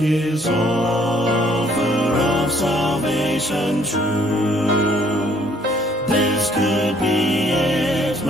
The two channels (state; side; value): normal; both; correlation 0.63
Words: offer of salvation true. This could be it,